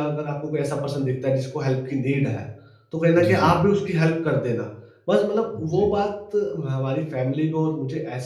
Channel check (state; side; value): identical; both; correlation 1.00